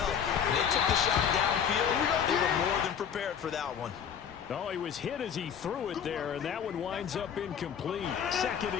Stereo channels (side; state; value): right; quieter; 8.0 dB